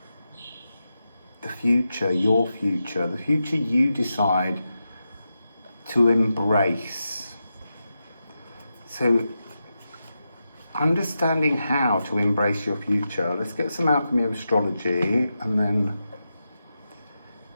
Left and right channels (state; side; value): inverted; both; correlation -0.89